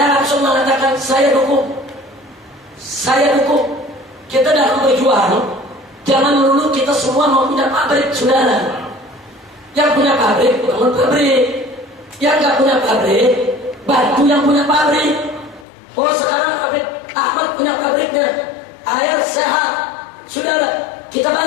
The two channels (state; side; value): drops out; right; at 15.7 s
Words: langsung mengatakan saya dukung. Kita dalam berjuang, jangan melulu kita semua mau punya pabrik, saudara. Yang punya pabrik, bangun pabrik. Yang nggak punya pabrik, bantu yang punya pabrik. Oh sekarang Habib Ahmad punya pabriknya, air sehat, saudara. Kita